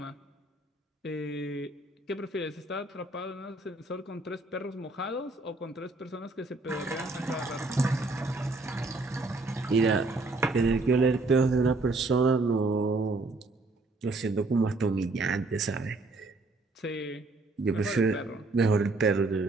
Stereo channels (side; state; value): left; quieter; 3.2 dB